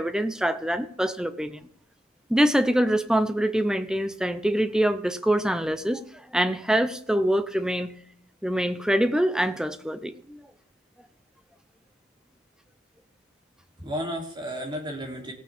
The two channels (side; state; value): both; normal; correlation 0.90